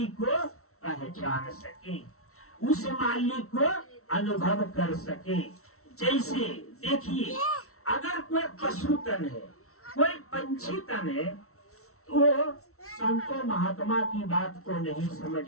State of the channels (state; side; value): late; right; 0.63 ms